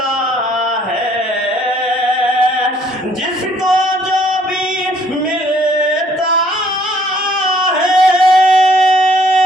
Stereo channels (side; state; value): both; normal; correlation 0.63